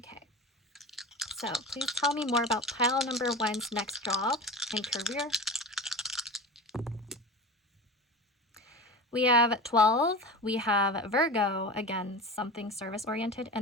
so please tell me more about pile number 1's next job and career. We have 12, we have Virgo, again, something service-oriented,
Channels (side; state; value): both; normal; correlation 0.30